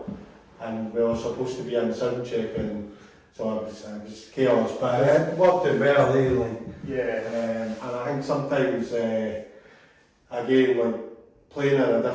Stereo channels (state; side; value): identical; both; correlation 1.00